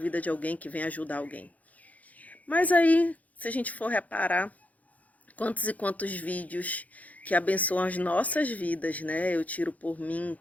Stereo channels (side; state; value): right; late; 0.074 ms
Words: de alguém, que vem ajudar alguém? Mas aí, se a gente for reparar, quantos e quantos vídeos que abençoam as nossas vidas, né? Eu tiro por mim